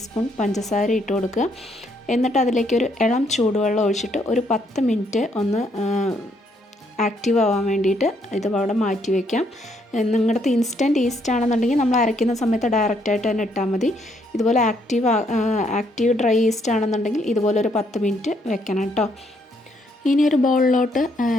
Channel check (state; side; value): normal; both; correlation 0.71